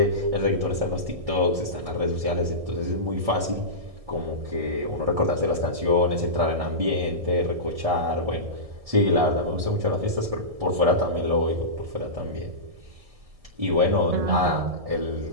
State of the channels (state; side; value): late; left; 1.7 ms